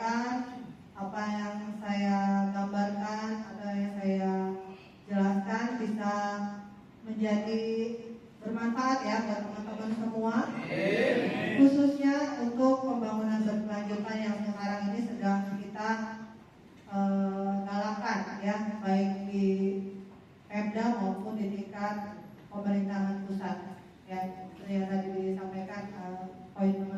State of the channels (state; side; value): identical; both; correlation 1.00